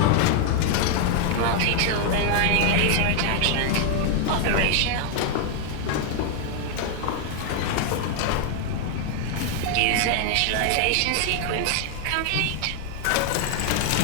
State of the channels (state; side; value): different; both; correlation 0.00